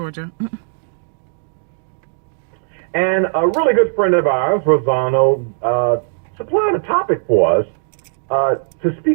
and a really good friend of ours, Rossano, supplied a topic for us to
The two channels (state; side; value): silent; left; 67 dB below the other